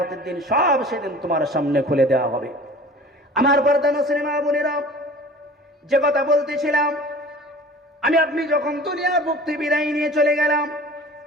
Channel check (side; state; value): both; normal; correlation 0.43